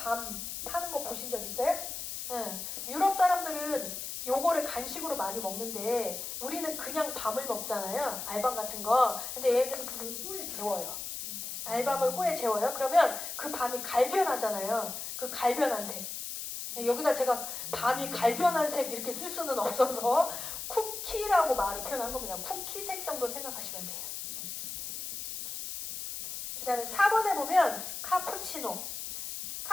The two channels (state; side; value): noise; left; hiss, 6 dB below the sound